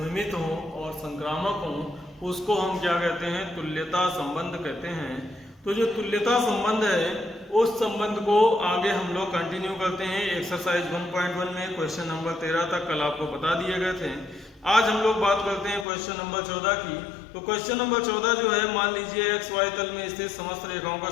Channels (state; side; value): drops out; right; at 15.9 s